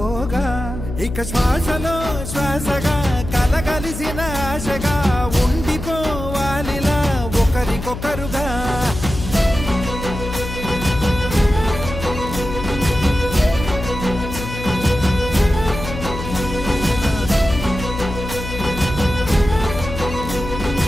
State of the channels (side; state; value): left; noise; hum, 8 dB below the sound